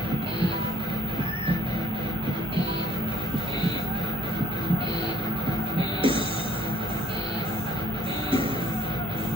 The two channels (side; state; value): both; normal; correlation 0.66